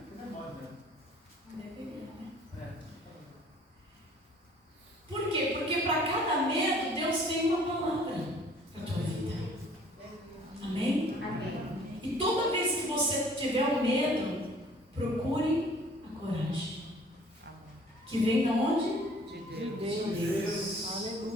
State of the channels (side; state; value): both; normal; correlation 0.54